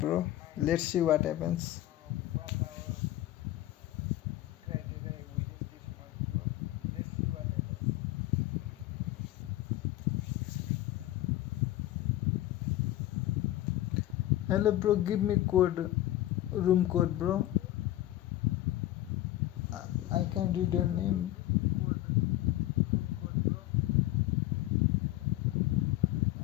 bro. Let's see what happens. Hello, bro. Give me code, room code, bro. I can't read your name.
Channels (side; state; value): right; quieter; 15.1 dB